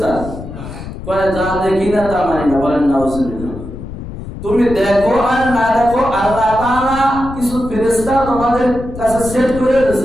কয় যা দেখি না তা মানি না। বলেন নাউযুবিল্লাহ। তুমি দেখো আর না দেখো, আল্লাহ তাআলা কিছু ফেরেশতা তোমাদের কাছে সেট করে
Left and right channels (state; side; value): noise; left; rumble, 10 dB below the sound